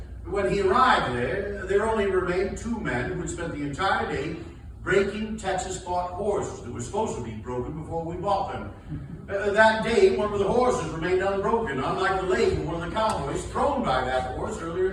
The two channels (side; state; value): both; identical; correlation 1.00